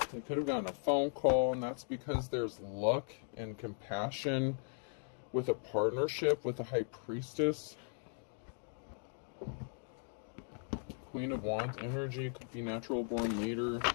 They could have gotten a phone call, and that's because there's luck and compassion with a partnership with a High Priestess. Queen of Wands energy, could be natural born leader.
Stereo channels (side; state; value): right; silent; 53 dB below the other